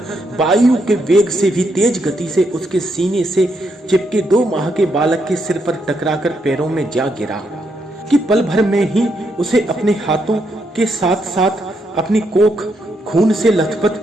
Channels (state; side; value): normal; both; correlation 0.78